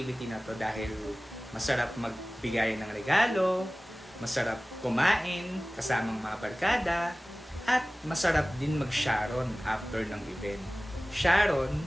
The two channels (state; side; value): normal; both; correlation 0.98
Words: na to dahil masarap magbigay ng regalo, masarap kumain kasamang mga barkada, at masarap din mag-sharon after ng event. Sharon,